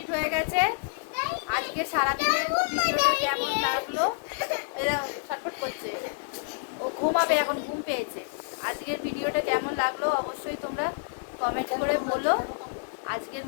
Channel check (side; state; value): right; silent; digital silence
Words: হয়ে গেছে। আজকে সারাদিনের ভিডিওটা কেমন লাগলো, এরা ছটফট করছে, ও ঘুমাবে এখন, ঘুম পেয়েছে। আজকের ভিডিওটা কেমন লাগলো অবশ্যই তোমরা কমেন্ট করে বলো। আজকের